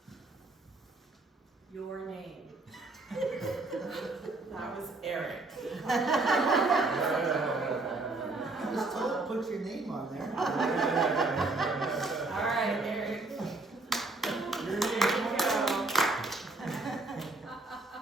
Your name. That was Eric. Just put your name on there. All right, Eric. Here you go.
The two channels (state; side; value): quieter; left; 3.2 dB